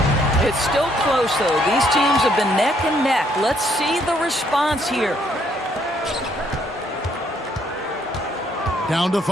It's still close, though. These teams have been neck and neck. Let's see the response here. Down to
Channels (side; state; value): both; normal; correlation 0.69